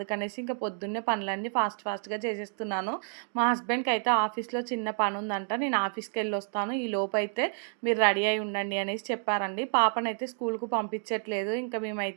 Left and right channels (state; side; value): silent; left; 58 dB below the other